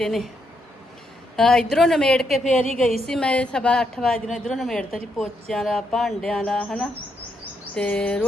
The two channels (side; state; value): both; normal; correlation 0.78